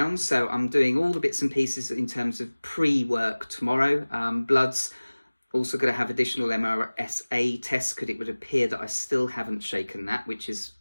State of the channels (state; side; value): inverted; both; correlation -1.00